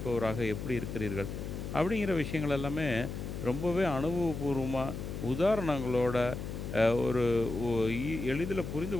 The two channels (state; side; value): noise; left; hum, 6 dB below the sound